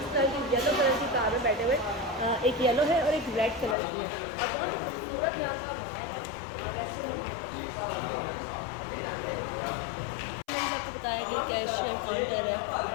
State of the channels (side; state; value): right; drops out; at 3.8 s